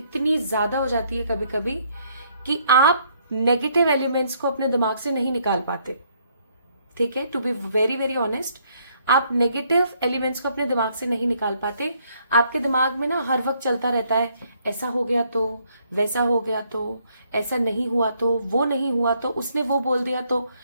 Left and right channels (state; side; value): inverted; both; correlation -0.69